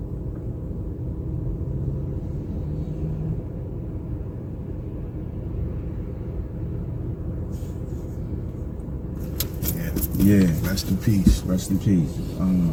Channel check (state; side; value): identical; both; correlation 1.00